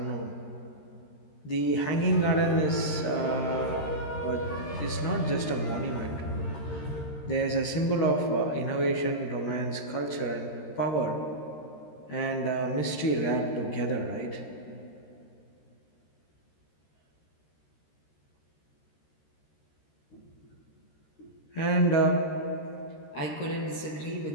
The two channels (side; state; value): right; late; 13 ms